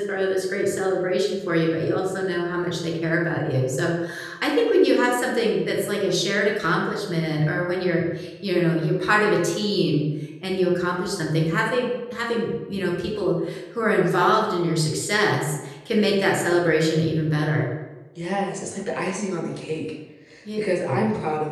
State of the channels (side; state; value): both; identical; correlation 1.00